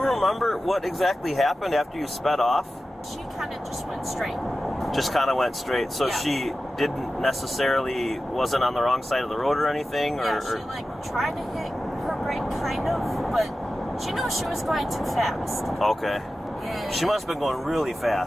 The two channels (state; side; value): normal; both; correlation 0.94